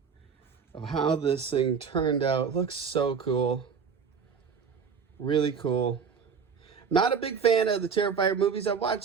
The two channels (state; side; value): quieter; left; 6.3 dB